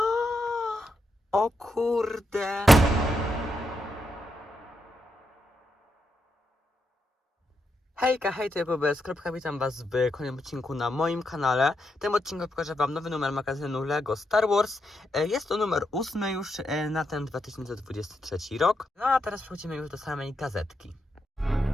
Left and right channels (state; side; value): normal; both; correlation 0.83